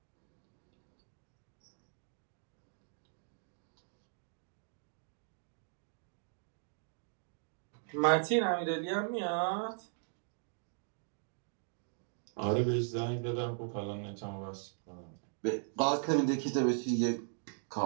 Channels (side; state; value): left; silent; digital silence